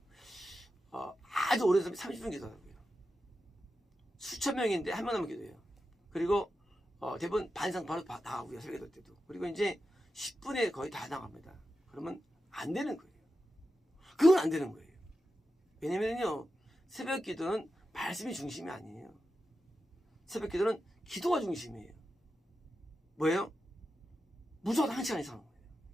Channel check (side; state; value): both; normal; correlation 0.90